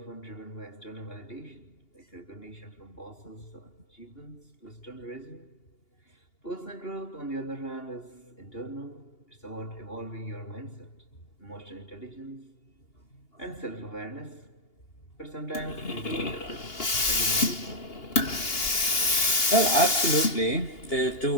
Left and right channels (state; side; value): late; right; 2.8 ms